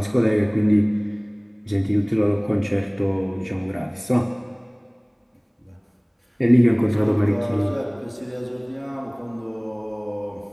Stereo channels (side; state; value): both; identical; correlation 1.00